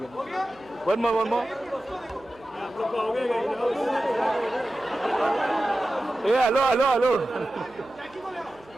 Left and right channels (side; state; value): right; noise; hum, 26 dB below the sound